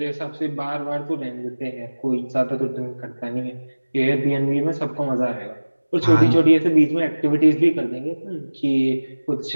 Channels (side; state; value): both; inverted; correlation -1.00